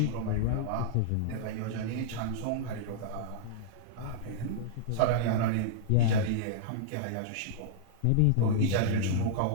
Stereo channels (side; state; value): both; different; correlation -0.01